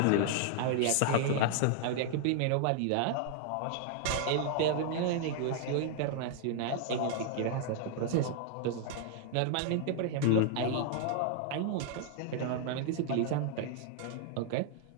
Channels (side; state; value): both; different; correlation 0.00